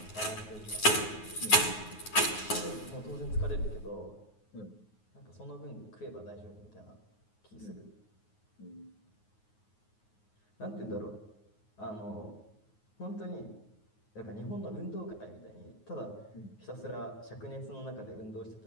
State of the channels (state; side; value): late; right; 9.5 ms